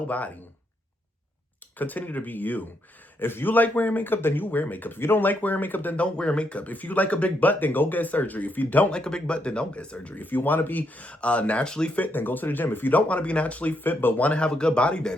Continue to be you. If you like wearing makeup, then you wear makeup. If you don't like wearing makeup, then don't wear makeup. If you like a big butt, then go get surgery. If you don't like a big butt, then don't get surgery. If you want to be naturally fit, then go to the gym. If you don't want to be naturally fit but want to have a good body,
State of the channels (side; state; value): both; normal; correlation 0.77